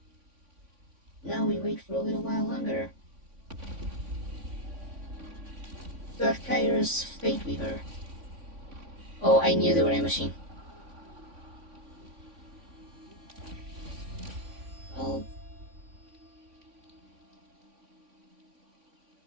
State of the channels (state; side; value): late; left; 3.5 ms